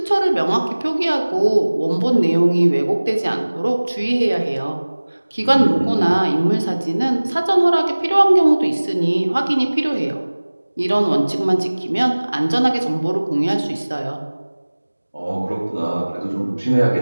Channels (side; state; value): both; inverted; correlation -1.00